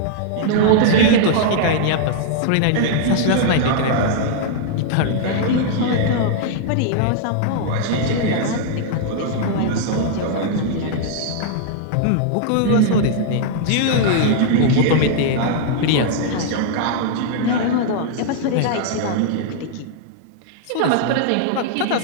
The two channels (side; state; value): both; different; correlation -0.01